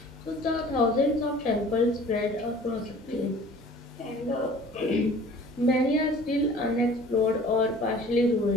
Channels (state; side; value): normal; both; correlation 0.48